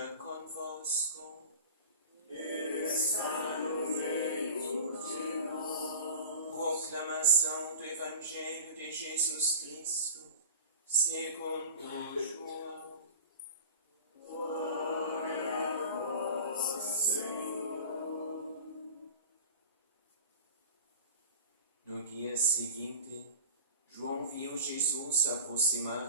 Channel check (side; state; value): both; inverted; correlation -0.35